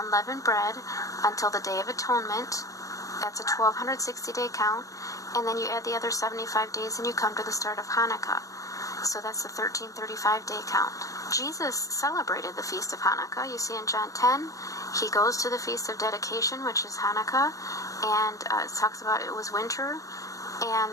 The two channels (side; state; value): right; late; 0.16 ms